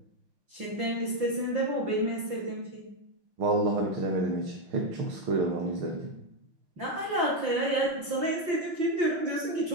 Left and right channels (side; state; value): left; late; 5.8 ms